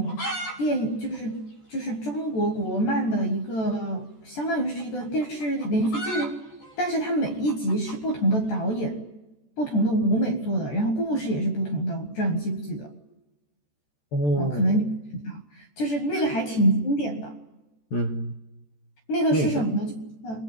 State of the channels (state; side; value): late; right; 14 ms